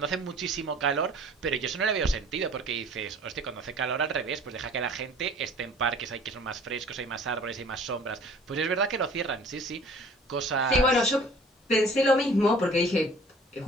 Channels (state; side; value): normal; both; correlation 0.49